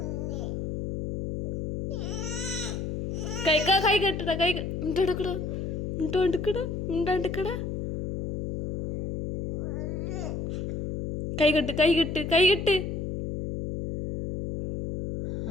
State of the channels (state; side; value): noise; left; hum, 4 dB below the sound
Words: കൈ കെട്ടടാ കൈ മിണ്ടാണ്ടിക്കടാ മിണ്ടാണ്ടിക്കടാ മിണ്ടാണ്ടിക്കടാ. കൈ കെട്ട് കൈ കെട്ട് കൈ കെട്ട്.